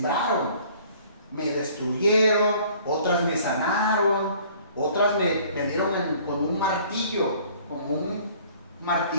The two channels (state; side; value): inverted; both; correlation -0.54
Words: me destruyeron, otras me sanaron, otras me dieron con un martillo, como un